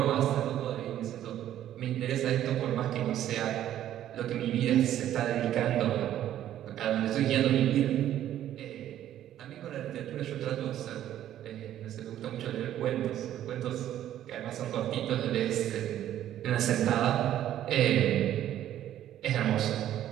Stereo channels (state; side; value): quieter; left; 11.9 dB